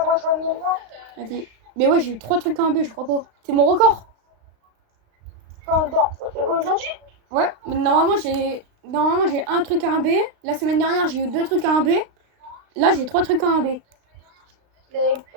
Vas-y. Mais ouais, j'ai eu 3 trucs à 1 B, je crois pas. C'est mon record. Aujourd'hui? Ouais, mais normalement j'ai un truc à 1 B. La semaine dernière, j'ai eu 2 trucs à 1 B. Là, j'ai 3 trucs à 1 B. Et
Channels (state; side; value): late; left; 35 ms